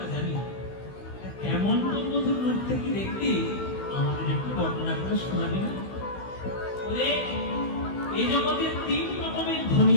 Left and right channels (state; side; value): late; right; 16 ms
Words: জানি। কেমন তোর মধুর রূপ থেকে দেখবি আমাদের একটু বর্ণনা করে শোনাবি না? বলে এই জগতে 3 রকমের ধ্বনি